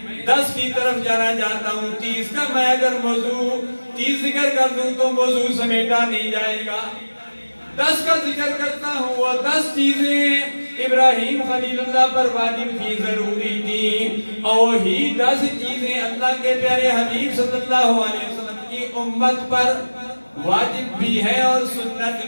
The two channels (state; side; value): inverted; both; correlation -1.00